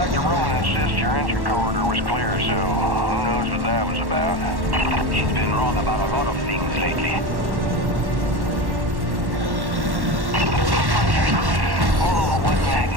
Roman insists your entry corridor was clear, so who knows what that was about. She's been wrong about a lot of things lately. Oh, what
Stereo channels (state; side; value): late; left; 1.1 ms